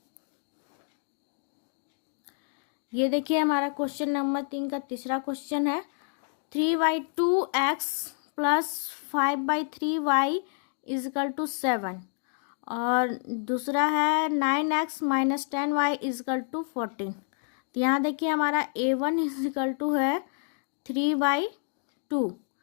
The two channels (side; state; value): right; silent; 59 dB below the other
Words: ये देखिए हमारा क्वेश्चन नंबर 3 का तीसरा क्वेश्चन है 3/2x + 5/3y इजकल टू 7। और दूसरा है 9x - 10y इजकल टू 14। तो यहाँ देखिए हमारा A1 इजकल टू है 3/2,